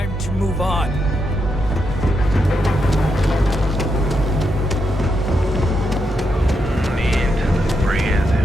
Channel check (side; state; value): both; normal; correlation 0.82